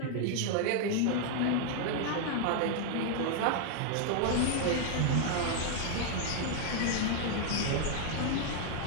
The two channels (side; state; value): both; different; correlation 0.00